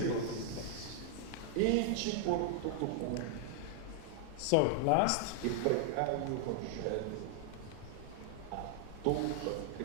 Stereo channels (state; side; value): different; both; correlation 0.00